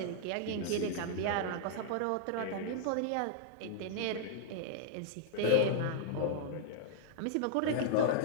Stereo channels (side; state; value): both; different; correlation -0.01